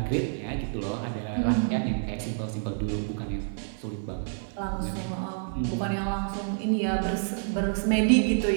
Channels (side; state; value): left; silent; 59 dB below the other